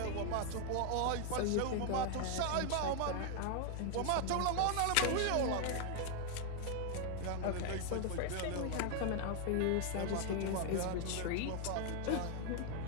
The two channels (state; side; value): different; both; correlation 0.00